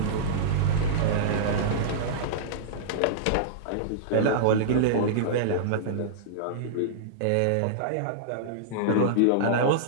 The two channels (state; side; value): different; both; correlation -0.03